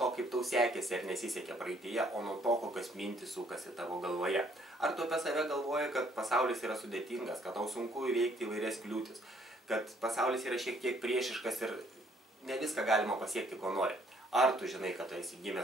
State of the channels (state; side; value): normal; both; correlation 0.64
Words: kaip tau sekėsi ar nesisekė praeityje, o nuo to, kokios mintys sukasi tavo galvoje. Ar tu apie save galvoji, kad pasaulis yra sudėtingas, kad tau sunku įveikti įvairias kliūtis, kad pasaulis yra šiek tiek priešiškas ir ne viską galima pasiekti, ko nori? Ar tu žinai, kad tu esi